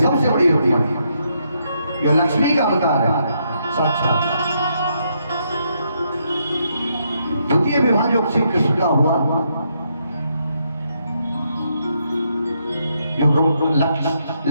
बड़ी रुक्मणी जो लक्ष्मी का अवतार है साक्षात। द्वितीय विवाह जो श्री कृष्ण का हुआ, जो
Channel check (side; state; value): both; inverted; correlation -0.76